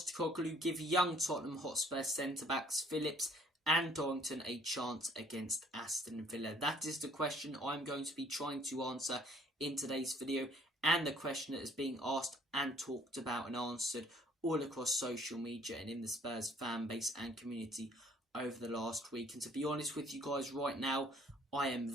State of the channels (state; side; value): normal; both; correlation 0.59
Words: give young Tottenham Hotspur centre-backs Phillips and Dorrington a chance against Aston Villa? That is the question I'm going to be trying to answer in today's video, and the question that is being asked and talked about and answered all across social media and in the Spurs fan base and community over the last week. And to be honest with you guys, right now, I am